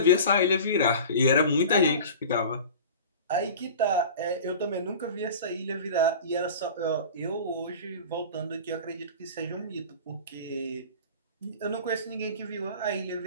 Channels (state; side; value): inverted; both; correlation -0.37